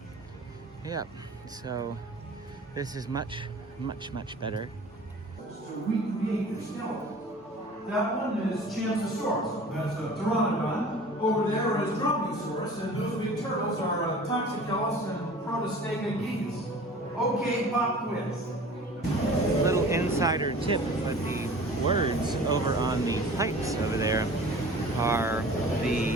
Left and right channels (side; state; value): both; normal; correlation 0.43